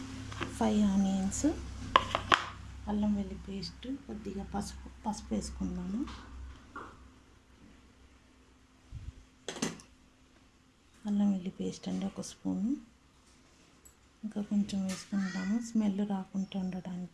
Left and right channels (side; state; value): both; identical; correlation 1.00